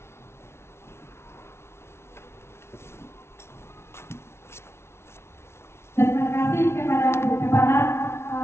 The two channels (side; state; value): right; late; 0.12 ms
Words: Terima kasih kepada Bu Kepala